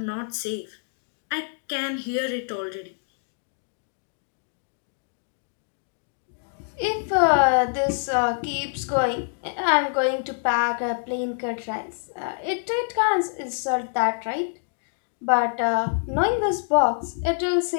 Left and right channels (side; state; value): right; silent; digital silence